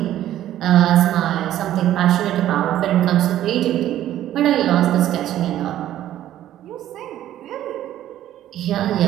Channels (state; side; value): quieter; left; 12.6 dB